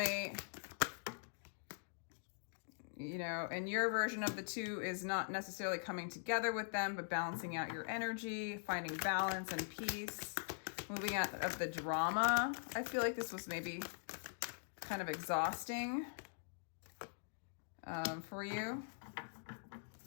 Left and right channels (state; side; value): silent; right; digital silence